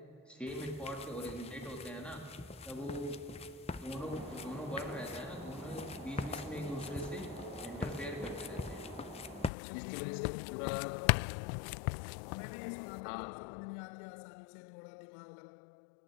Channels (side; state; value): right; drops out; at 9.5 s